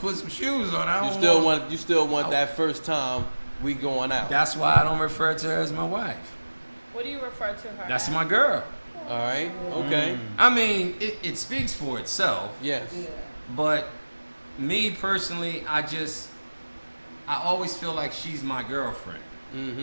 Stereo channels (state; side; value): inverted; both; correlation -1.00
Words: put some shoes on. I You don't still want that first time we going out. That's why I don't refer to her as my wife. What do you refer to her? That's as? my girl. All right. Okay. I mean, it speaks for itself. Yes. Yeah. But me personally, I always feel like she's my girlfriend,